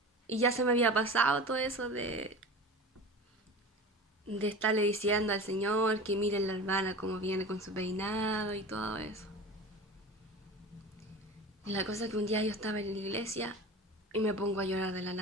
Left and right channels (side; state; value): both; normal; correlation 0.34